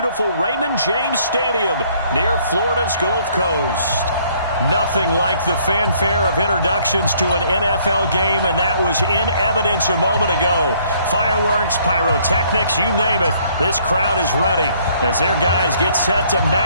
Raymond James Stadium near Florida's Gulf Coast. Nothing like the fanfare of introductions to an NFL game, and that was in evidence a moment ago. Fireworks, pyrotechnics, you name it. This crowd is ready as their guys get set to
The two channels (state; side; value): inverted; both; correlation -0.63